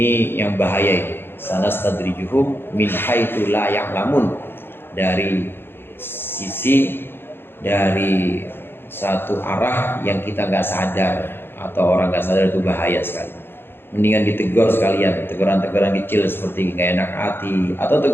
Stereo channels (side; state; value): right; late; 0.10 ms